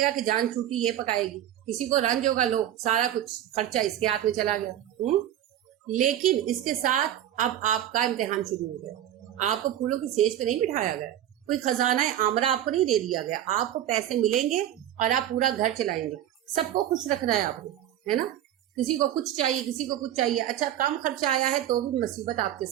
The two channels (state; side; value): quieter; left; 11.8 dB